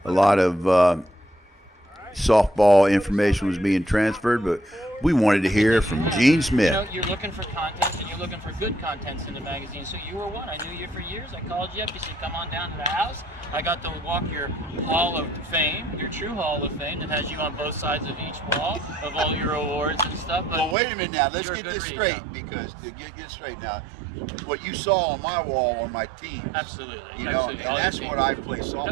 a lot of softball information was being transferred, but we wanted to hear from Gene Smith. You're looking for content, and you're looking for good contents in the magazine. So you were one. I knew you for years. I called you up. You said, come on down to the house. I got to walk your Hall of Fame, your true Hall of Fame that has you on both sides of each wall of all your awards and stuff. But well, wait a minute now. Let's get this straight, because to get straight now, what you saw on my wall are my teams. Absolutely. You know, and that's what I play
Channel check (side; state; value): left; drops out; at 20.8 s